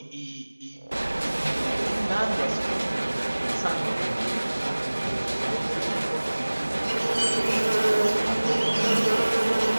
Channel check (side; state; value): both; inverted; correlation -1.00